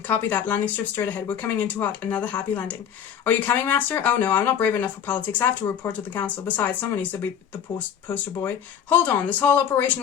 that. Landing strip straight ahead. We're coming in too hot. Another happy landing. Are you coming, Master? Oh no, I'm not brave enough for politics. I have to report to the council. Besides, someone needs to be the poster boy. Hold on, this whole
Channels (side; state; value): right; quieter; 8.5 dB